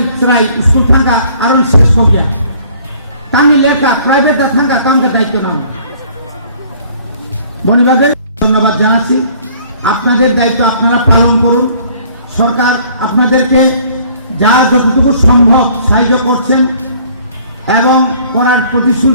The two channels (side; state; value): both; inverted; correlation -0.56